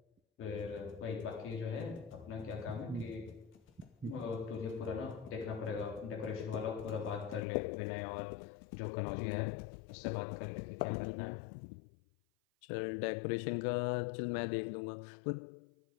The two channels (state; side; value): drops out; right; at 7.4 s